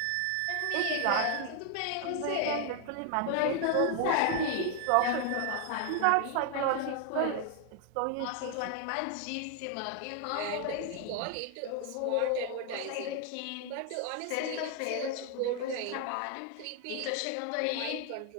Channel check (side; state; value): both; different; correlation 0.00